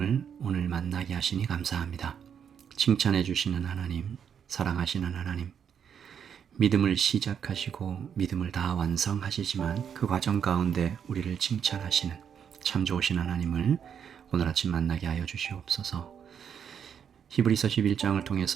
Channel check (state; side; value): quieter; left; 7.9 dB